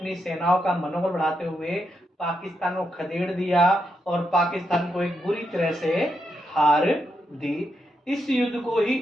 सेनाओं का मनोबल बढ़ाते हुए पाकिस्तान को खदेड़ दिया और पाकिस्तान को एक बुरी तरह से हार दी। इस युद्ध को ही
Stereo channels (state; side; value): normal; both; correlation 0.82